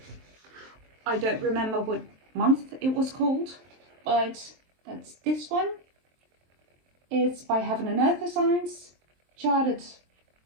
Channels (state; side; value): late; left; 23 ms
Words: I don't remember what month it was called, but that's this one. It's by Heaven and Earth Science, charted